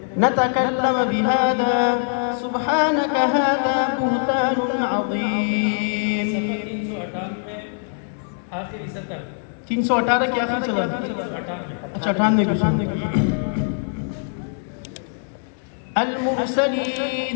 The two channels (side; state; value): right; silent; digital silence